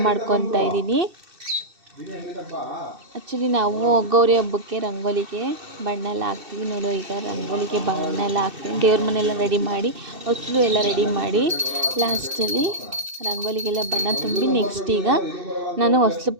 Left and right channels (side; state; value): left; late; 2.6 ms